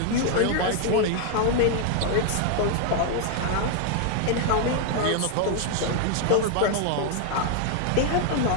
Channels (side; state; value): both; different; correlation 0.00